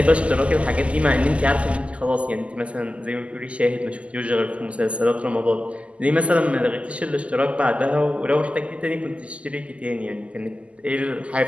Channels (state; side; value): late; left; 0.061 ms